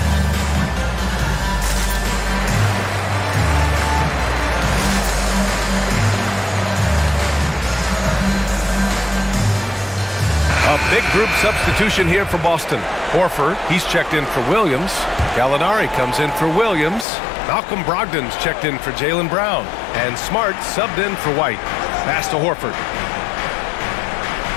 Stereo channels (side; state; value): right; drops out; at 17.1 s